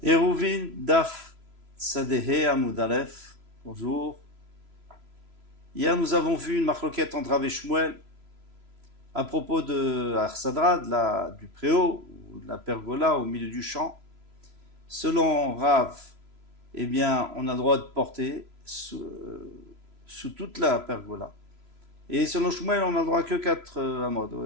Eruvin Daf Sadehe Amud Aleph. Bonjour. Hier, nous avons vu une marloquette entre Rav et Shmuel à propos de Arsadra, du préau, ou de la pergola au milieu du champ. Selon Rav, eh bien, on a le droit de porter sous toute la pergola. Et selon Shmuel, on n'a le droit que 4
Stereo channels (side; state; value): left; late; 3.0 ms